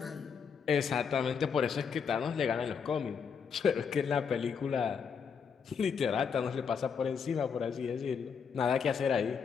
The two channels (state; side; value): quieter; right; 6.4 dB